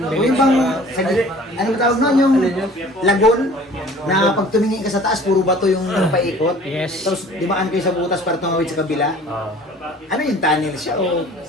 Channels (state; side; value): normal; both; correlation 0.48